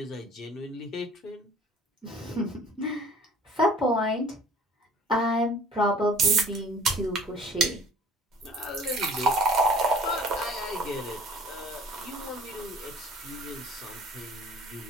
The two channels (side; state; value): both; normal; correlation 0.51